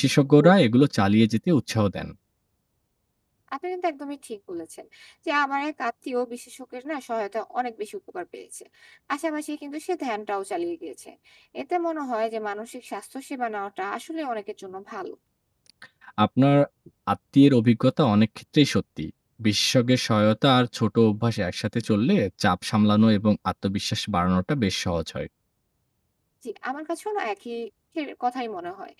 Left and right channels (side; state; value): both; identical; correlation 1.00